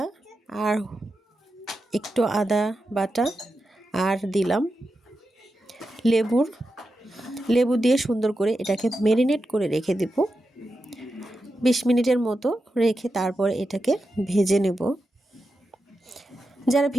আর একটু আদা বাটা, আর দিলাম লেবু দিয়ে সুন্দর করে এটাকে ম্যারিনেট করে রেখে দেব 20 মিনিটের মতো রেখে তারপর এটাকে ভেজে নেব। যারা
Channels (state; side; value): normal; both; correlation 0.89